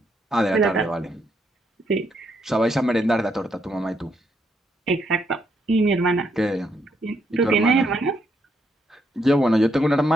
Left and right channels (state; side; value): normal; both; correlation 0.76